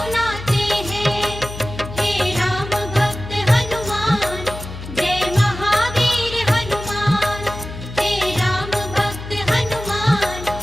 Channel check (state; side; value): noise; left; hum, 11 dB below the sound